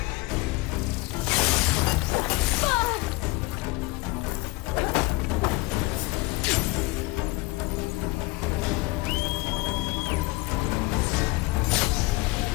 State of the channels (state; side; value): quieter; right; 22.2 dB